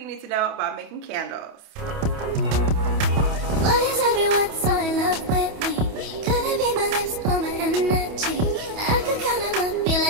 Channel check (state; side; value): late; left; 28 ms